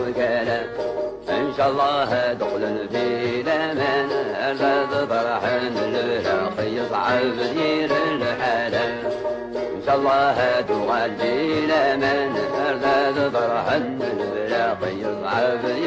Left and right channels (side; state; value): both; identical; correlation 1.00